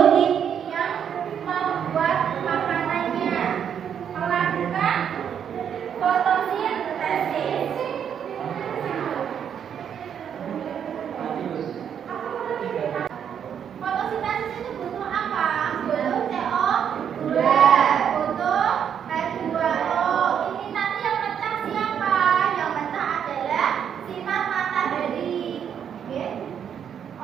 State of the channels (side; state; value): left; quieter; 8.4 dB